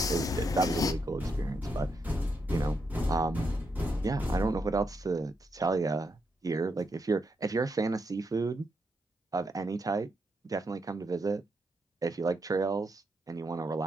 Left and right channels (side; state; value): both; normal; correlation 0.81